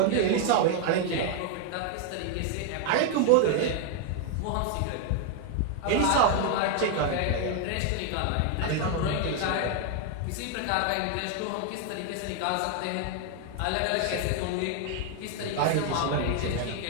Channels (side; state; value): both; different; correlation 0.00